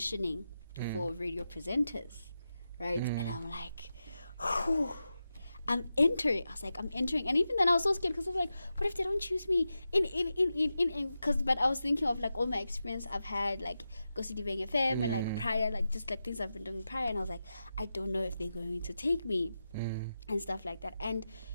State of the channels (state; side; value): inverted; both; correlation -0.91